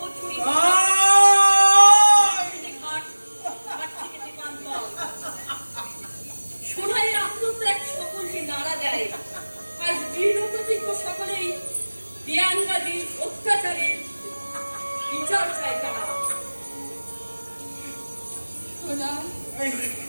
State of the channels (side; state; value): both; inverted; correlation -1.00